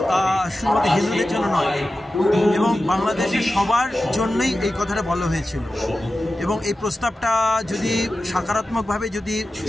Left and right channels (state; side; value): normal; both; correlation 0.94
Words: শুধুমাত্র হিন্দুদের জন্য নয়, এবং বাংলাদেশের সবার জন্যই এই কথাটা বলা হয়েছিল। এবং এই প্রস্তাবটা যদি সকারাত্মকভাবে যদি